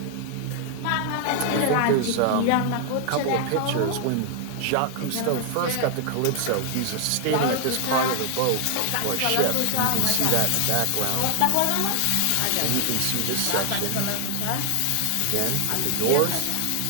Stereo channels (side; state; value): both; different; correlation 0.00